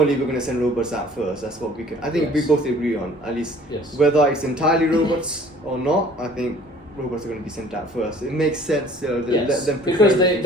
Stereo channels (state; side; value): normal; both; correlation 0.52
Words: we're going to send robots out first. That's what we can. I think we both agree on, at least. Whether it's entirely robots or not, I think robots are going to be sent out first. It makes sense. Let them prepare because